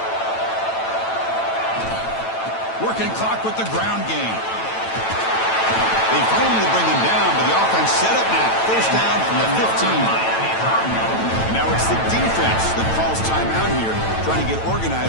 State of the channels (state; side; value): late; right; 9.0 ms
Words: Working clock with the ground game. They finally bring him down, but the offense set up now. First down from the 15. And now it's the defense that calls timeout here, trying to get